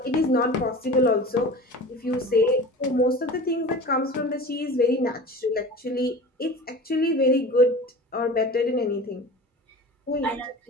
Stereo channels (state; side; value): normal; both; correlation 0.36